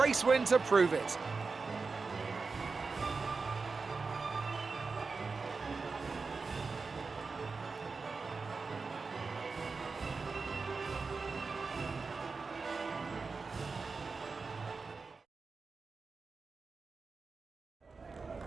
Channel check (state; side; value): quieter; left; 4.4 dB